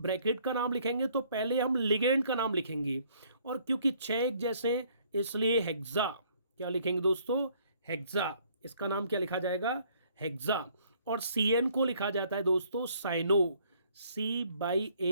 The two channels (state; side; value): inverted; both; correlation -0.62